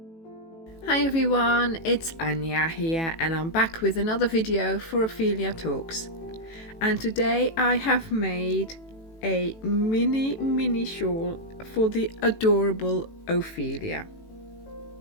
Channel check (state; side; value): late; right; 18 ms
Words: everyone, it's Anja here and I'm back with another video for Ophelia Talks. And today I have made a mini shawl for the adorable Ophelia.